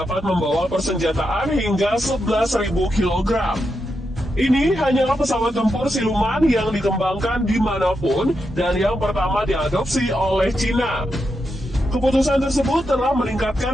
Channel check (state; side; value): normal; both; correlation 0.85